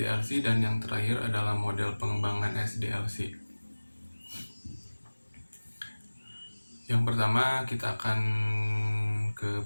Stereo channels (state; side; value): inverted; both; correlation -1.00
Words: dan yang terakhir adalah model pengembangan SDLC. Yang pertama kita akan ke